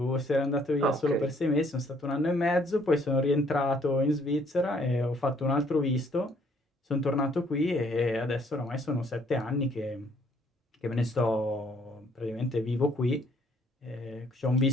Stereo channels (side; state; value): both; normal; correlation 0.64